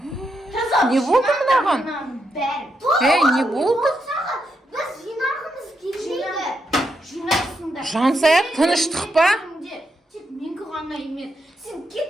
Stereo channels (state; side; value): normal; both; correlation 0.82